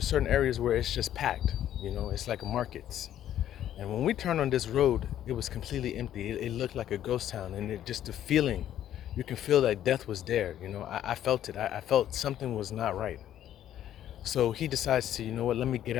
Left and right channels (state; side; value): quieter; right; 11.4 dB